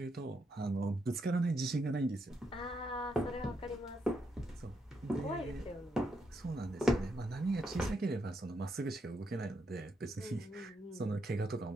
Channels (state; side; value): normal; both; correlation 0.79